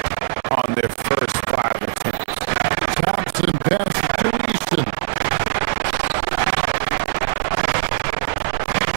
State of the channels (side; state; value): left; silent; digital silence